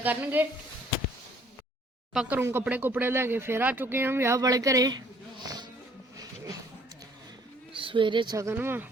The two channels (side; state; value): both; normal; correlation 0.60